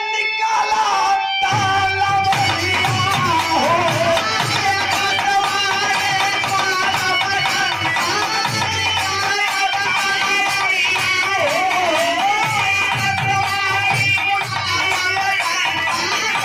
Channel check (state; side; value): identical; both; correlation 1.00